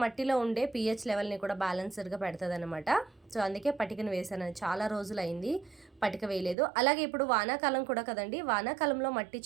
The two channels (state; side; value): drops out; left; at 6.6 s